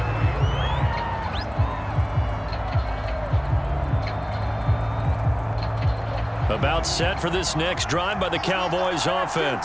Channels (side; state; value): both; identical; correlation 1.00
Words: About set for this next drive by the Cowboys